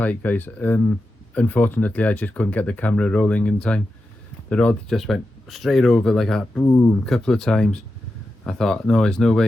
guys. Unfortunately, I just couldn't get the camera rolling in time. The rod just went straight over like that, boom, a couple of times. I thought, no, there's no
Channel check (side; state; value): both; normal; correlation 0.90